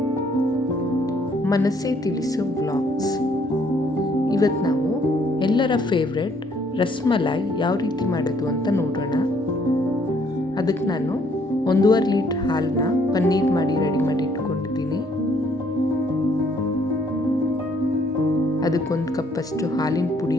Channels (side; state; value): both; normal; correlation 0.66